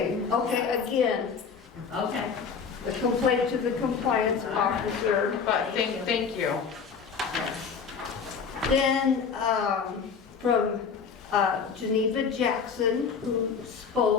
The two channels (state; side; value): quieter; right; 6.0 dB